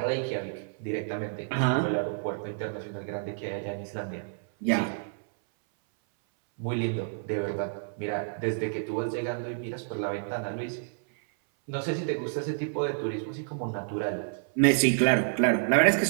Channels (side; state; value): left; silent; 58 dB below the other